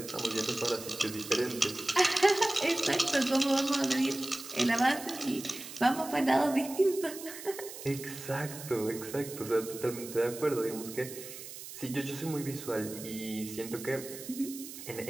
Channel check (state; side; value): noise; right; hiss, 12 dB below the sound